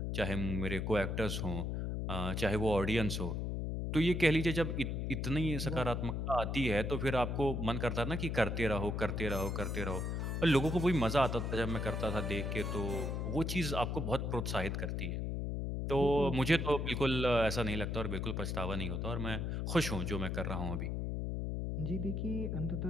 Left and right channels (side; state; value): left; noise; hum, 1 dB below the sound